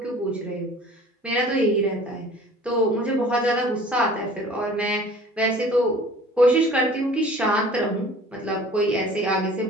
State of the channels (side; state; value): both; normal; correlation 0.47